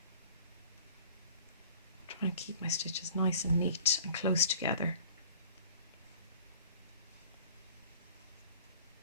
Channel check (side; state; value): both; inverted; correlation -0.47